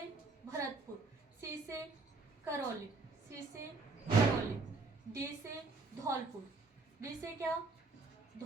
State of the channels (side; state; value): left; quieter; 3.8 dB